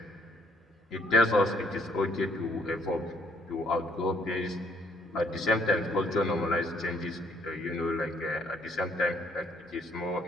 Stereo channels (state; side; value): normal; both; correlation 0.65